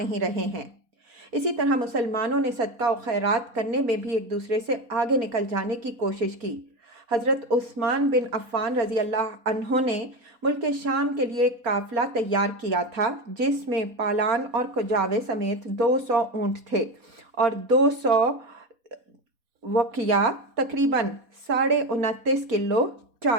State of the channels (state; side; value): late; left; 4.2 ms